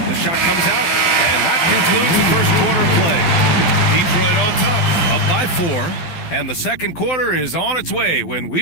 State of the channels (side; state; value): right; late; 12 ms